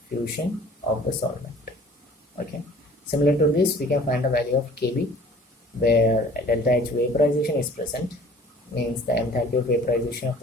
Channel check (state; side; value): normal; both; correlation 0.50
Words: fusion of the solvent. Okay. Similar to this, we can find the value of Kb, where delta H vaporization is present, means the enthalpy of vaporization of